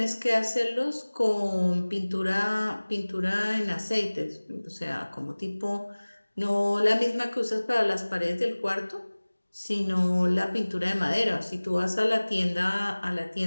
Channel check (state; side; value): inverted; both; correlation -1.00